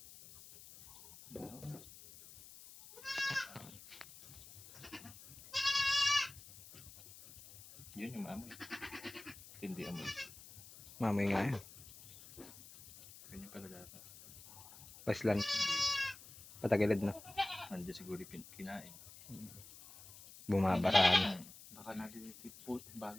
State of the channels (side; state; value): left; noise; hiss, 18 dB below the sound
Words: Yun yung amoy. Hindi amoy. Mamay nga yan. Ganyan pala dapat. Paslan. Patagilid na. Nandiyan siguro kinain. Bumabaraan. Baka nalilipot,